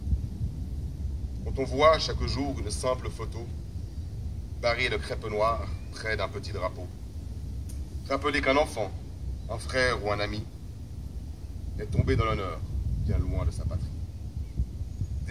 Quand on voit chaque jour une simple photo, barrée de crêpe noire près d'un petit drapeau, rappelez qu'un enfant, un frère ou un ami est tombé dans l'honneur bien loin de sa patrie.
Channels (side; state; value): both; identical; correlation 1.00